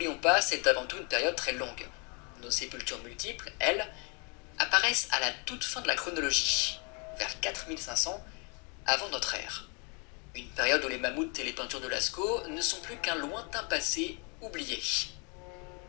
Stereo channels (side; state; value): right; quieter; 33.7 dB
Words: pas, c'est avant tout une période très longue. Nos sépultures multiples, elles, apparaissent à la toute fin de la chronologie, vers 4500 avant notre ère. Une période où les mammouths et les peintures de Lascaux ne sont plus qu'un lointain passé oublié.